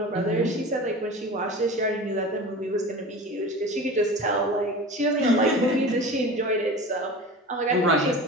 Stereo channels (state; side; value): normal; both; correlation 0.34